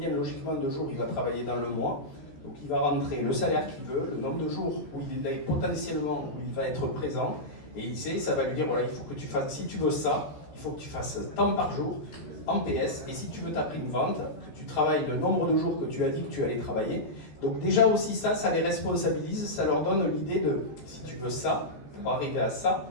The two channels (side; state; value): right; late; 13 ms